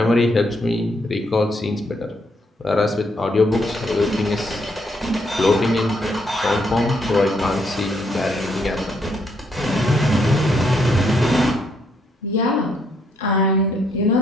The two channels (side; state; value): both; normal; correlation 0.73